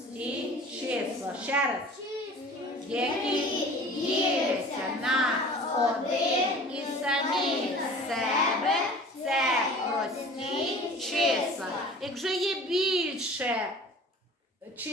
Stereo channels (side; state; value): both; normal; correlation 0.43